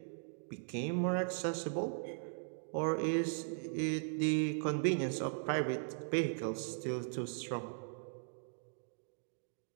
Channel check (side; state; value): left; silent; digital silence